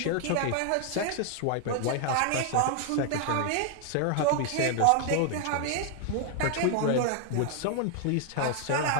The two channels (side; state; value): both; different; correlation 0.00